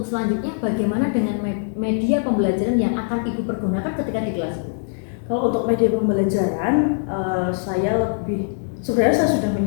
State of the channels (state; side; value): silent; right; 64 dB below the other